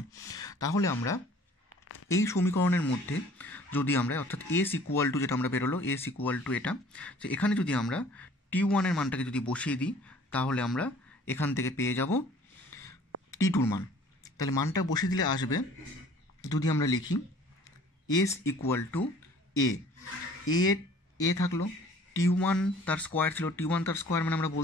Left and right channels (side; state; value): both; normal; correlation 0.52